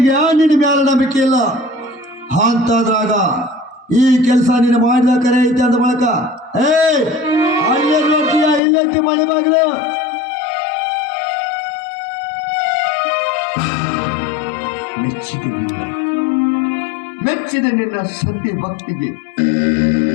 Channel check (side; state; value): right; drops out; at 8.6 s